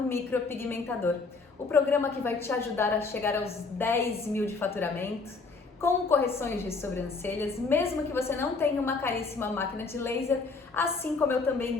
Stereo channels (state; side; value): quieter; right; 4.1 dB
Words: Micropigmentador. O programa que vai te ajudar a chegar aos 10 mil de faturamento, com correções de sobrancelhas, mesmo que você não tenha uma caríssima máquina de laser, assim como eu